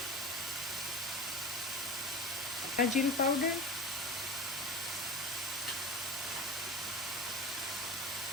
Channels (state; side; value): normal; both; correlation 0.33